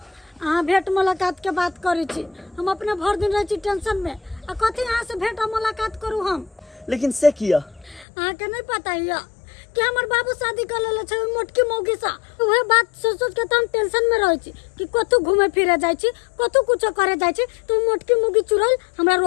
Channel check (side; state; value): right; drops out; at 8.1 s